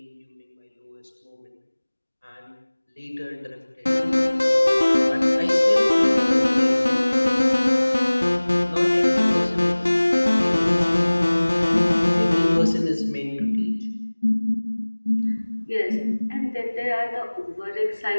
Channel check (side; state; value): both; inverted; correlation -1.00